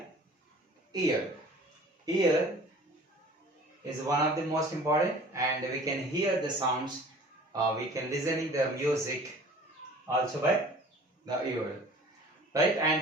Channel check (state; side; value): normal; both; correlation 0.47